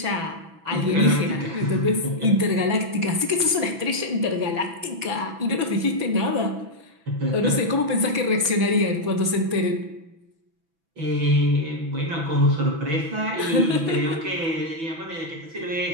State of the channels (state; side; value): late; left; 6.0 ms